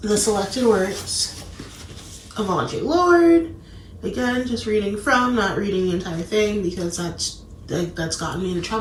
the selected works, of Audre Lorde. Again, just reading from, not reading the entire thing, because that's gotten me into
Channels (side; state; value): both; identical; correlation 1.00